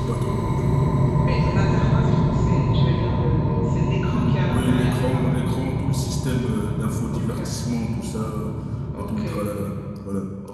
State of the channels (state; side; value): identical; both; correlation 1.00